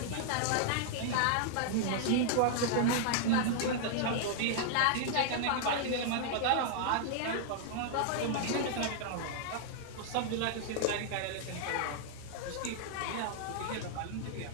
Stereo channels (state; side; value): different; both; correlation -0.01